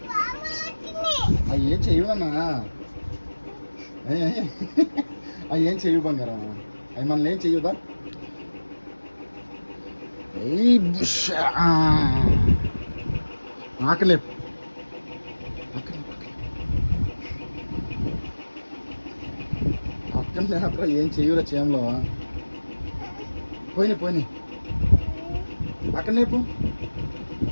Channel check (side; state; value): both; inverted; correlation -1.00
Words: ఏం చేయవు నాన్న. ఏం చేయవు బంగారం. అవి మనల్ని ఏం చెయ్యదా? ఆకలేపు. అక్కడ లేపరా. ఏం చెయ్యరా చేయంలో. పోయినాయి పోయినాయి. అక్కడ లేపు.